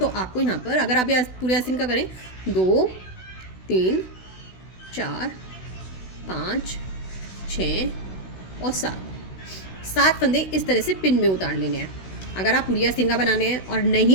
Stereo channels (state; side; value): late; right; 16 ms